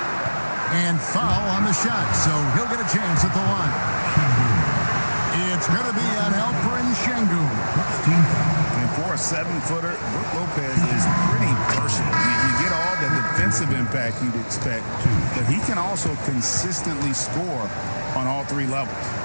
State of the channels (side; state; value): both; inverted; correlation -1.00